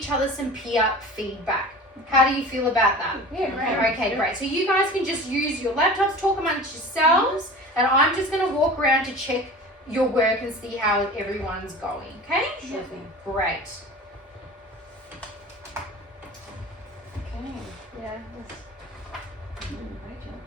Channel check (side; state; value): both; normal; correlation 0.38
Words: other some peer feedback. How do you feel about that? Yeah, great. Okay, great. So you guys can just use your laptops, talk amongst yourselves, and I'm just going to walk around to check your work and see how everyone's going, okay? Sure thing. Great. Okay. Yeah. Great job.